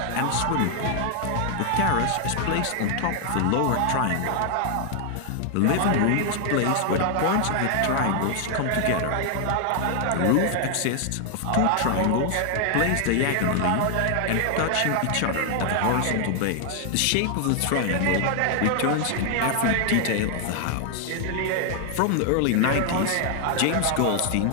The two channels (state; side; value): different; both; correlation 0.00